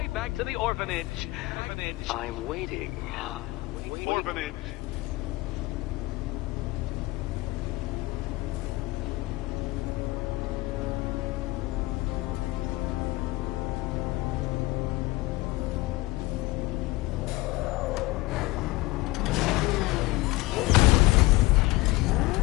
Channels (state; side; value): quieter; right; 20.3 dB